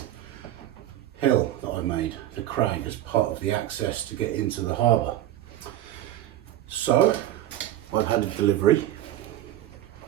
hill that I made, the crag, as part of the access to get into the harbour. So I've had a delivery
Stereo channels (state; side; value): quieter; left; 13.1 dB